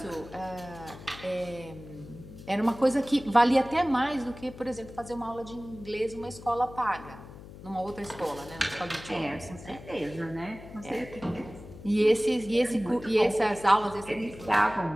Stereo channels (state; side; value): noise; left; hum, 16 dB below the sound